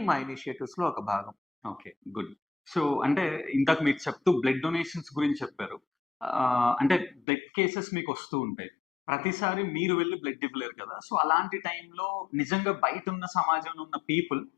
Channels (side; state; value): right; drops out; at 7.2 s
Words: మా ఇనిషియేటివ్స్ లో ఒక భాగం. ఓకే. గుడ్. సో అంటే ఇందాక మీరు చెప్తూ బ్లడ్ డొనేషన్స్ గురించి చెప్పారు. అంటే బ్లడ్ కేసెస్ మీకు వస్తూ ఉంటాయి. ప్రతిసారి మీరు వెళ్ళి బ్లడ్ ఇవ్వలేరు కదా! సో అలాంటి టైంలో నిజంగా బయట ఉన్న సమాజంలో ఉన్న పీపుల్